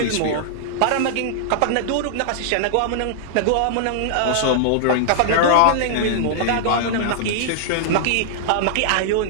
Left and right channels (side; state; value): both; different; correlation -0.01